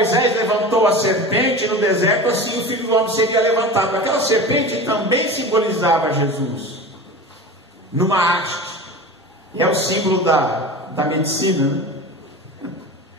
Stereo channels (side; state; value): both; normal; correlation 0.32